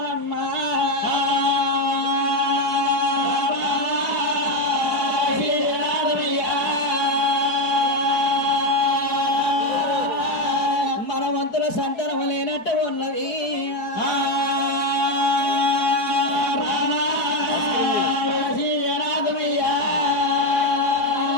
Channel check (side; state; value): right; late; 4.7 ms